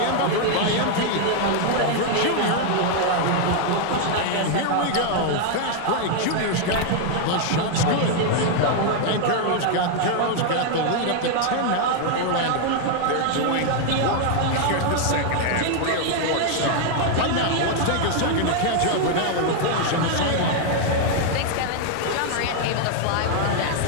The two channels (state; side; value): different; both; correlation 0.00